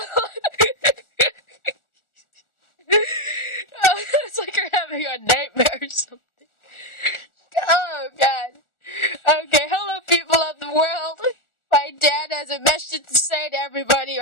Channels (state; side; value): late; right; 1.4 ms